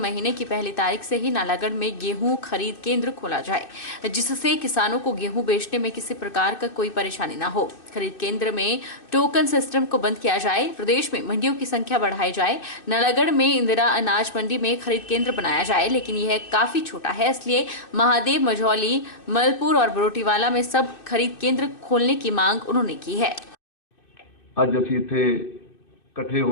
की पहली तारीख से ही नालागढ़ में गेहूं खरीद केंद्र खोला जाए, जिससे किसानों को गेहूं बेचने में किसी प्रकार का कोई परेशानी न हो। खरीद केंद्र में टोकन सिस्टम को बंद किया जाए, प्रदेश में मंडियों की संख्या बढ़ाई जाए। नालागढ़ में इंदिरा अनाज मंडी में खरीद केंद्र बनाया जाए, लेकिन यह काफी छोटा है, इसलिए महादेव, मझौली, मलपुर और बरोटीवाला में सब खरीद केंद्र खोलने की मांग उन्होंने की है। ਅੱਜ ਅਸੀਂ ਇੱਥੇ ਇਕੱਠੇ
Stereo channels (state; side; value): late; right; 2.6 ms